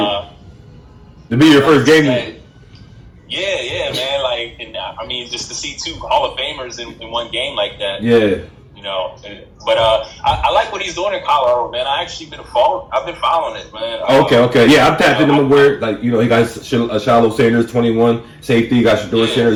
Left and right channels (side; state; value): both; identical; correlation 1.00